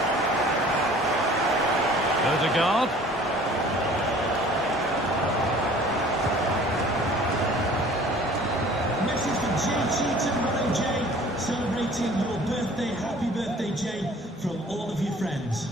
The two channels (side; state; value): both; normal; correlation 0.50